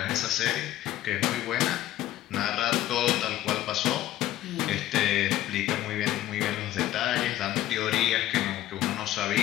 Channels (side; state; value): right; quieter; 14.1 dB